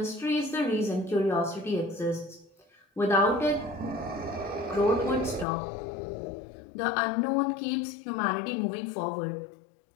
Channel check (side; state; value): right; drops out; at 5.5 s